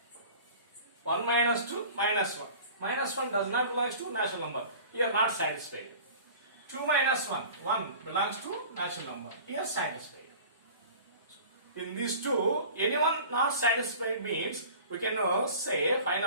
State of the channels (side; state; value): both; inverted; correlation -0.42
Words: 1 minus 2, minus 1. Minus 1 does not belongs to natural number. Here not satisfied. 2 minus 1, 1 belongs to natural number. Here satisfied. In these two, anyone not satisfied means we can say